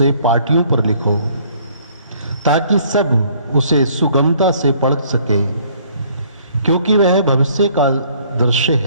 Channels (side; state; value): both; inverted; correlation -0.60